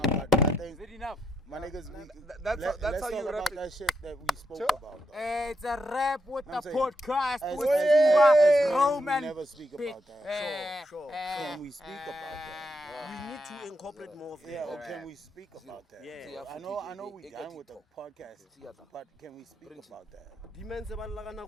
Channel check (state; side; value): normal; both; correlation 0.80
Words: but I think Is it enough? my niggas, That's let's how you talk rap about it. that shit that we spoke about. Though. It's a rap with I'm the saying, podcast As- with as- Roman. We never speak about that. Sure. Can we speak about that? We need to incorporate more of Yeah, that. or can we speak about that? Yeah. I know we done with the podcast, but can we speak about that? Dimense ba la kana